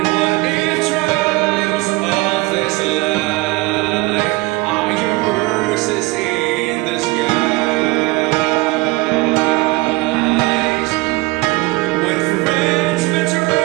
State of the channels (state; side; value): quieter; left; 22.5 dB